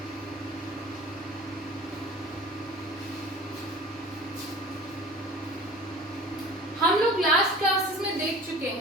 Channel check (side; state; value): both; normal; correlation 0.42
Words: हम लोग लास्ट क्लासेस में देख चुके